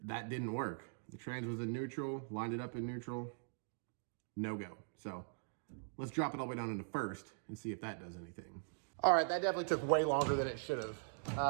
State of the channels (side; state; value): left; silent; digital silence